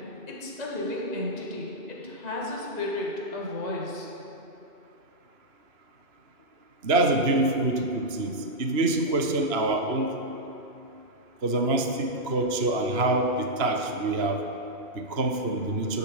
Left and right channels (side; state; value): left; late; 2.9 ms